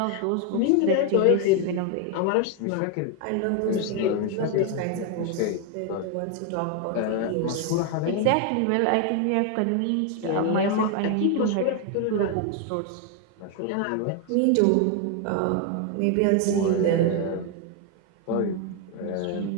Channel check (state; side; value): different; both; correlation 0.01